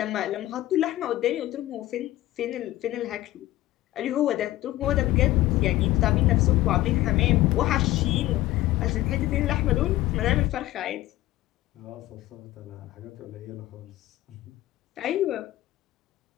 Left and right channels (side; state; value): right; quieter; 16.1 dB